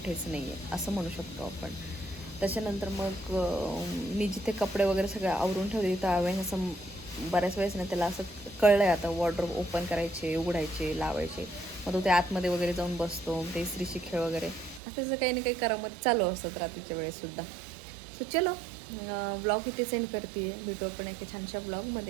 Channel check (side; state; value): left; drops out; at 14.8 s